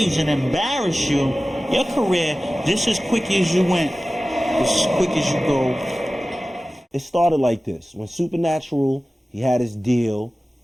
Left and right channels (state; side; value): normal; both; correlation 0.97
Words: and embarrass you, your career, just as quick as you went, just as quick as you go. It started like this. When Supernatural, he had his deal,